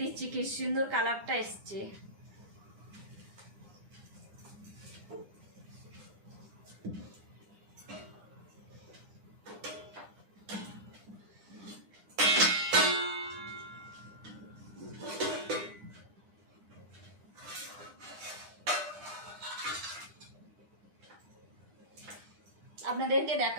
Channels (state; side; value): late; left; 9.9 ms